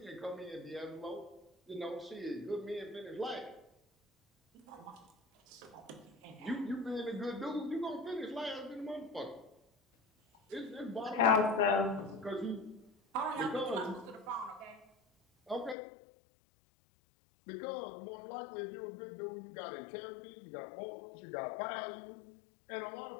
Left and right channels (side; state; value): right; drops out; at 15.8 s